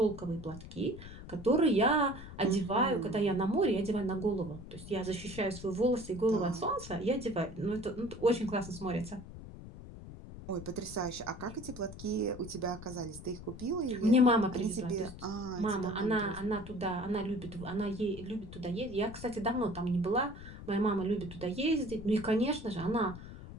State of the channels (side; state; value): left; noise; rumble, 13 dB below the sound